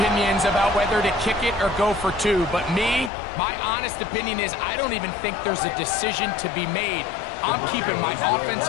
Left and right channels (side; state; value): right; drops out; at 3.1 s